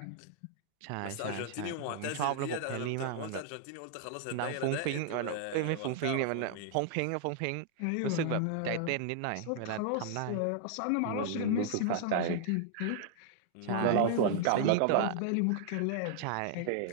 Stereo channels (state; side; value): different; both; correlation -0.01